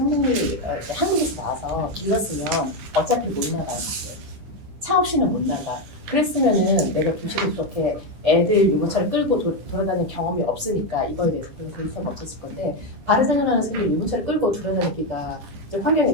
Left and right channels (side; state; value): left; late; 10 ms